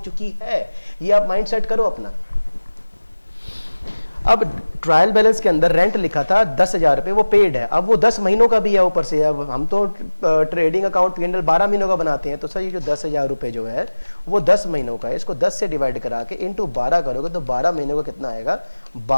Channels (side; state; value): both; inverted; correlation -1.00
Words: चुकी है। ये आप माइंड सेट करो अपना। अब ट्रायल बैलेंस के अंदर रेंट लिखा था 10,000 रुपये, वो पेड है, अब वो 10 महीनों का भी है ऊपर से। अब हम तो ट्रेडिंग अकाउंट P&L 12 महीनों का बनाते हैं, तो सर ये जो 10,000 रुपये जो है वो 10 महीनों का है, इसको 10 से डिवाइड करा के इंटू 12 करोगे तो 12 महीनों का कितना आएगा,